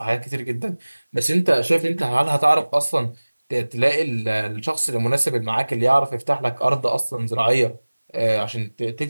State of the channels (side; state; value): both; inverted; correlation -1.00